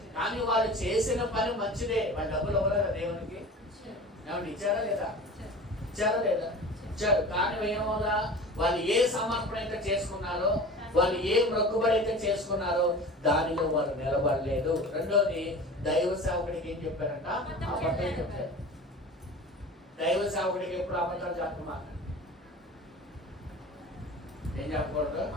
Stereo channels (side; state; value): both; normal; correlation 0.37